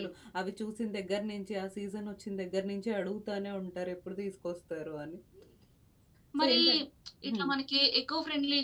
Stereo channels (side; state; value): both; identical; correlation 1.00